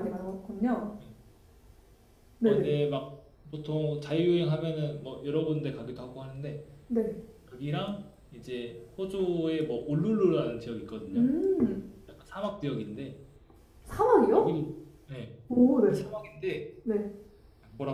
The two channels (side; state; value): both; identical; correlation 1.00